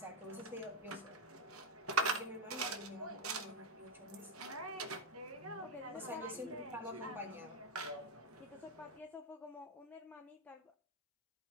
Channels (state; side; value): normal; both; correlation 0.06